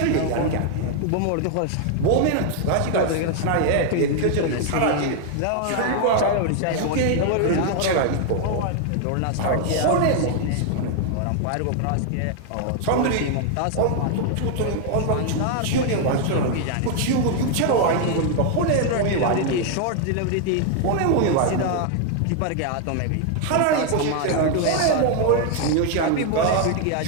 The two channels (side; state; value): both; different; correlation 0.00